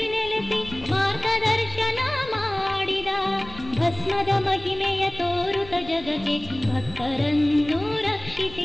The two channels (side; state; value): left; noise; rumble, 17 dB below the sound